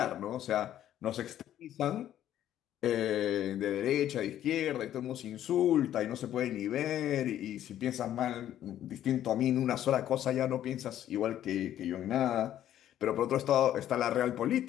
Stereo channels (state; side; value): quieter; right; 11.6 dB